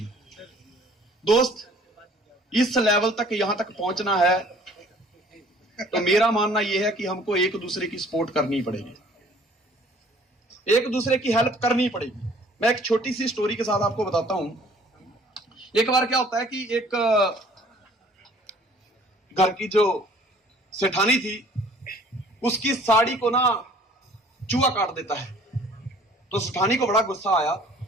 दोस्त, इस लेवल तक यहां तक पहुंचना है तो मेरा मानना यह है कि हमको एक दूसरे की सपोर्ट करनी पड़ेगी, एक दूसरे की हेल्प करनी पड़ेगी। मैं एक छोटी सी स्टोरी के साथ आपको बताता हूं। एक बार क्या होता है कि एक घर की जो सेठानी थी उसकी साड़ी को ना चूहा काट देता है। तो सेठानी को बड़ा गुस्सा आया।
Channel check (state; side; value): normal; both; correlation 0.54